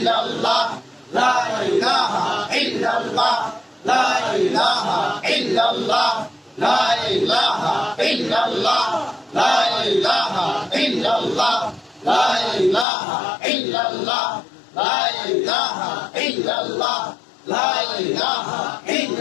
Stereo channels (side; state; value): right; drops out; at 12.9 s